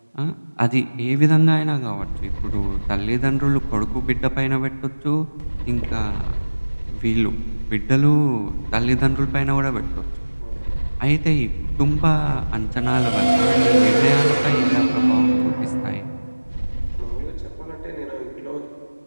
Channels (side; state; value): both; inverted; correlation -1.00